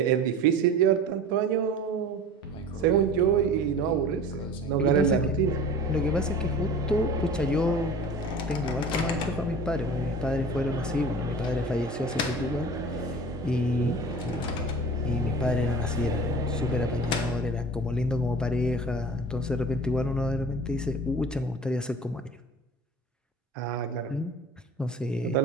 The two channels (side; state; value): both; normal; correlation 0.40